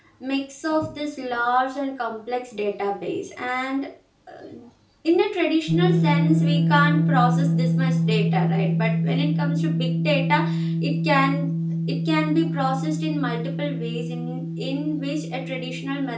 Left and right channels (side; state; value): both; identical; correlation 1.00